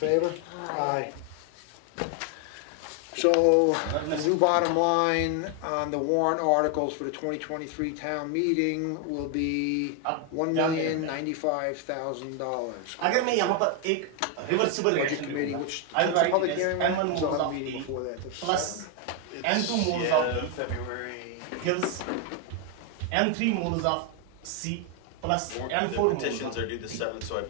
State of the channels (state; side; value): different; both; correlation 0.01